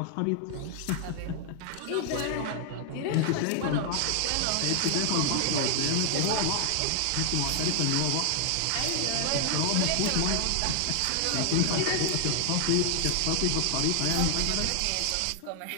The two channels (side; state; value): both; different; correlation 0.00